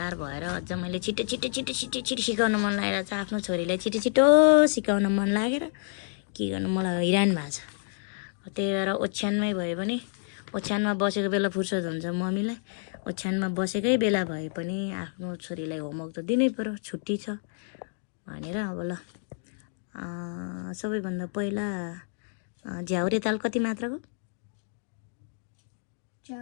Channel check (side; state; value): right; silent; digital silence